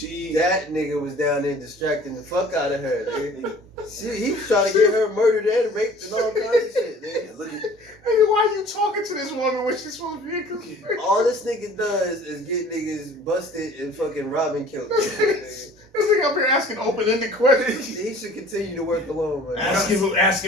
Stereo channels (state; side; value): normal; both; correlation 0.49